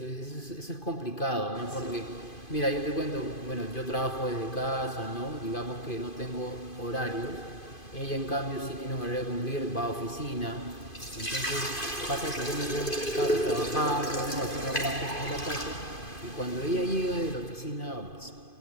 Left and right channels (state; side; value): late; right; 2.5 ms